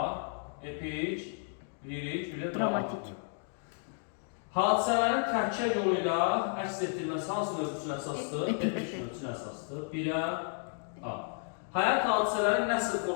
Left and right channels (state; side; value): silent; right; 56 dB below the other